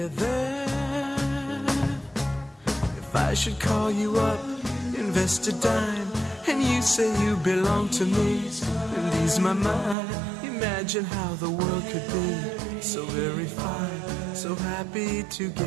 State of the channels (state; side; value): drops out; left; at 10.0 s